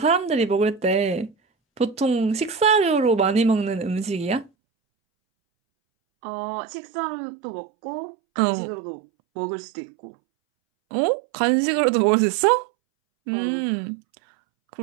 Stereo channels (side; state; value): left; drops out; at 4.5 s